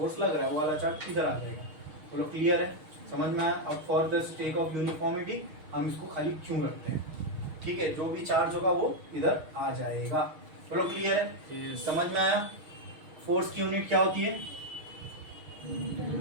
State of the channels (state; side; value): late; left; 6.4 ms